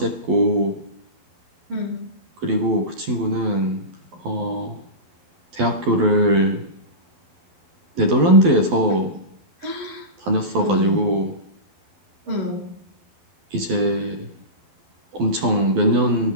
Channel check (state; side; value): late; left; 12 ms